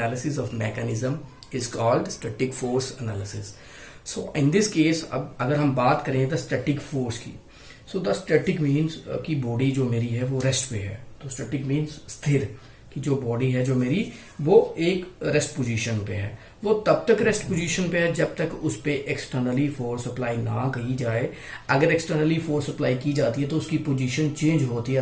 of mechanism is called static force analysis. So in this case, अब अगर हम बात करें the static force की, so the static means कि body जो मेरी है वो रेस्ट पे है. तो स्टैटिक मीन्स स्थिर, कि जो बॉडी है जो मेरी वो एक रेस्ट पोजीशन पे है. वो तब तक रेस्ट पोजीशन पे है जब तक उस पे एक्सटर्नली फोर्स अप्लाई ना की जाए. अगर एक्सटर्नली फोर्स अप्लाई की जाती है तो उसकी पोजीशन चेंज होती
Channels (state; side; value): identical; both; correlation 1.00